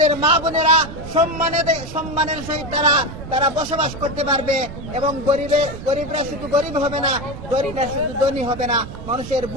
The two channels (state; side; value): noise; right; rumble, 11 dB below the sound